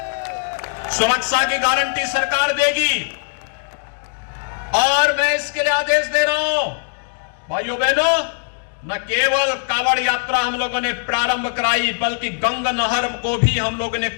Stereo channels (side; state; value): right; silent; digital silence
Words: सुरक्षा की गारंटी सरकार देगी और मैं इसके लिए आदेश दे रहा हूं भाइयों बहनों, न केवल कांवड़ यात्रा हम लोगों ने प्रारंभ कराई बल्कि गंगा नहर को भी हम लोगों ने